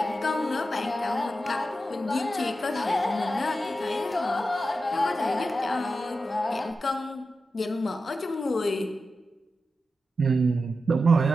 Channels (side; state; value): both; normal; correlation 0.90